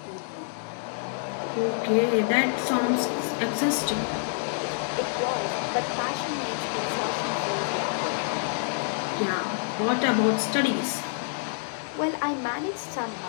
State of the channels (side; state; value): right; silent; digital silence